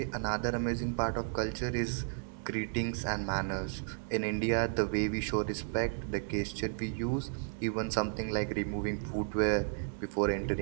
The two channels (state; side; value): silent; left; digital silence